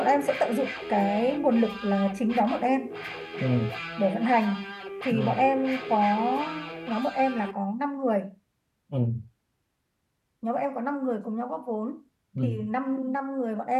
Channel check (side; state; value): both; identical; correlation 1.00